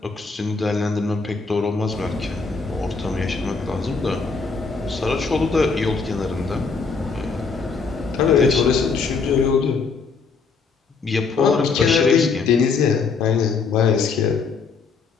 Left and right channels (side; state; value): right; quieter; 4.8 dB